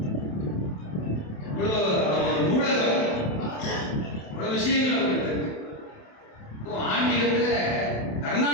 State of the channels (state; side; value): late; right; 27 ms